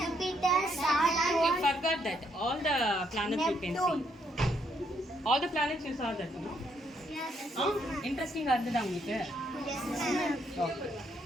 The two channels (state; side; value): normal; both; correlation 0.73